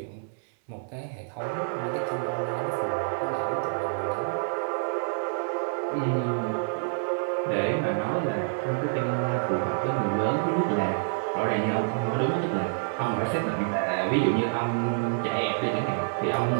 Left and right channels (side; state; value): left; silent; 60 dB below the other